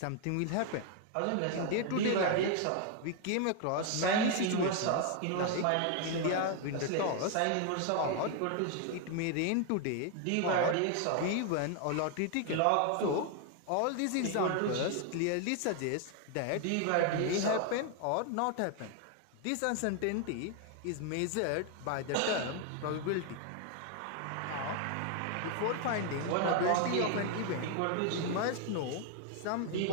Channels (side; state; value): both; different; correlation 0.01